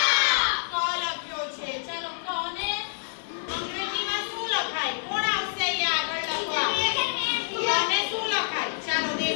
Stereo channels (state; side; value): silent; right; 60 dB below the other